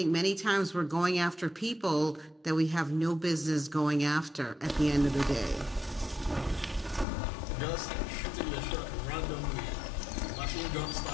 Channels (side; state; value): right; drops out; at 7.1 s